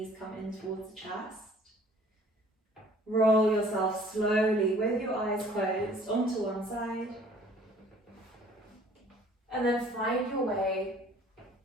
come in towards the chest. Roll yourself slowly with your eyes closed onto one side. And then find your way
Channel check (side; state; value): both; normal; correlation 0.54